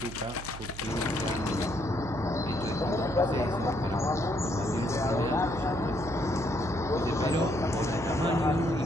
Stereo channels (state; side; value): noise; right; hum, 12 dB below the sound